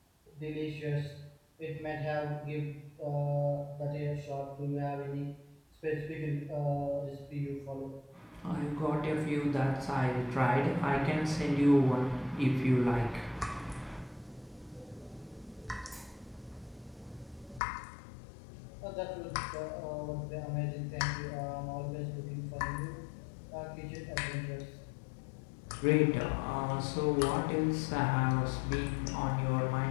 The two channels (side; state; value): right; drops out; at 17.6 s